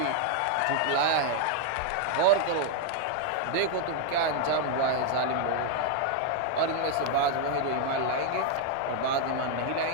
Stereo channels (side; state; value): both; different; correlation 0.00